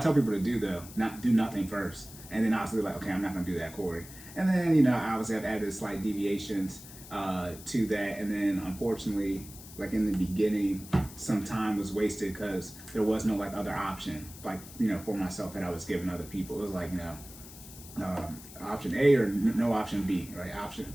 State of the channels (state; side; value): noise; left; hiss, 16 dB below the sound